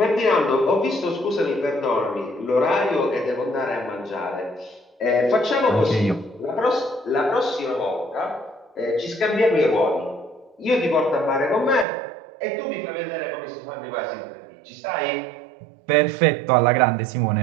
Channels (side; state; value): left; drops out; at 11.9 s